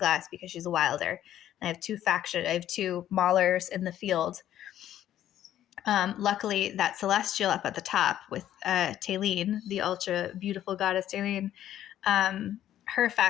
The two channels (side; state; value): right; quieter; 11.8 dB